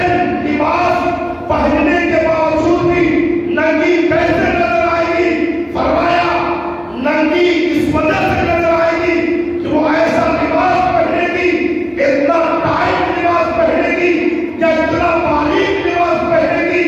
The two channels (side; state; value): both; identical; correlation 1.00